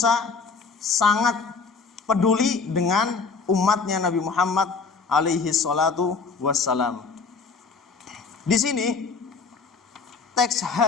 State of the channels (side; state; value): right; quieter; 4.8 dB